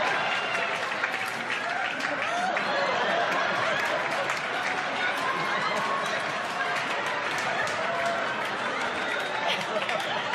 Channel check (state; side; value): identical; both; correlation 1.00